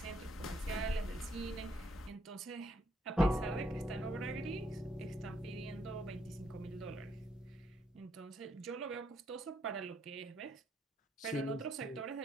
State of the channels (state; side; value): normal; both; correlation 0.73